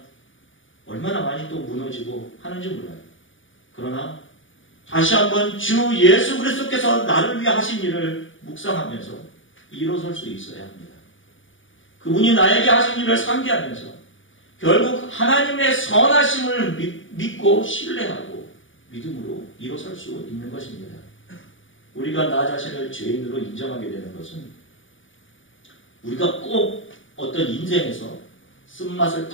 얼마나 많이 또 무너지고 하는지 몰라요. 그러나 다시 한번 주 예수 그리스도께서 나를 위해 하신 일을 묵상하면서 일어설 수 있어야 합니다. 그분이 나에게 하신 일을 상기하면서 결국 하나님의 선하심을 믿고 신뢰하고 믿음으로 일어설 수 있는 것입니다. 우리가 나 자신을 죄인으로 인정하게 되는 것은 우리가 꼭 어떤 인생에서 쓴맛을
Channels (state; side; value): late; right; 0.57 ms